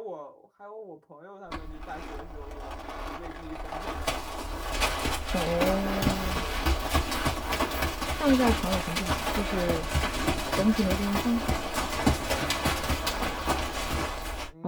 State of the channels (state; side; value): identical; both; correlation 1.00